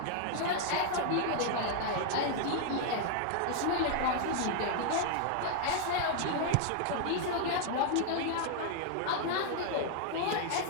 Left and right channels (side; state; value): both; different; correlation 0.00